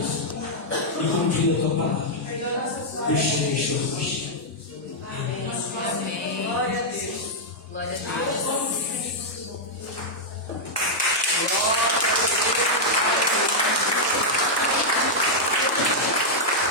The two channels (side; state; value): both; normal; correlation -0.05